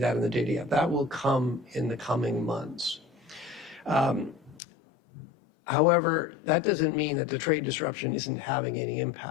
in the data yet. That will come in the coming months. However, that doesn't mean that the trade disruption isn't having any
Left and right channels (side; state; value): right; drops out; at 4.6 s